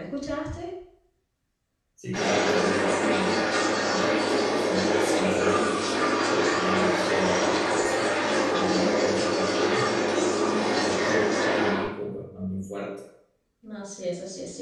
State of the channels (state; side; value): identical; both; correlation 1.00